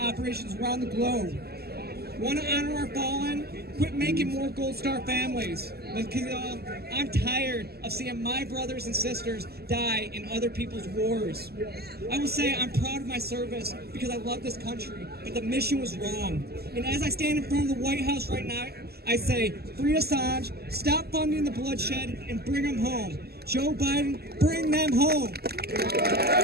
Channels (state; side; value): late; left; 0.46 ms